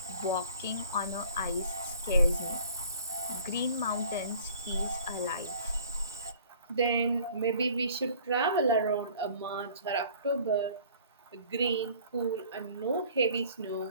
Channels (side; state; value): both; inverted; correlation -0.51